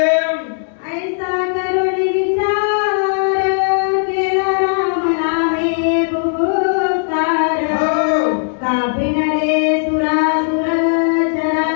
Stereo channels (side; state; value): right; silent; digital silence